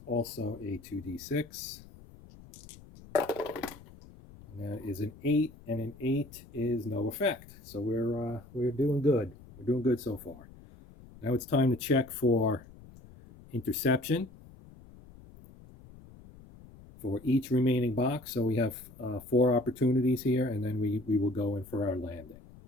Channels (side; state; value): left; noise; rumble, 20 dB below the sound